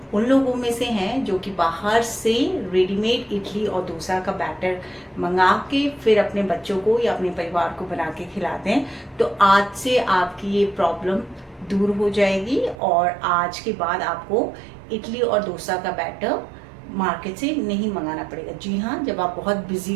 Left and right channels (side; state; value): left; drops out; at 12.8 s